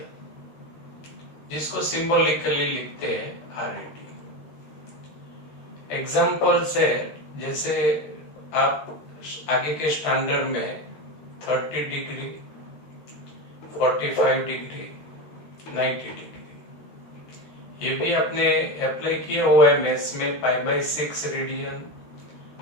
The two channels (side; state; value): right; late; 13 ms